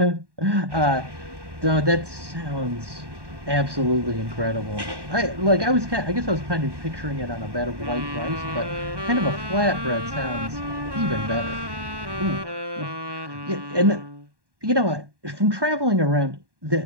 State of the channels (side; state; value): left; late; 1.1 ms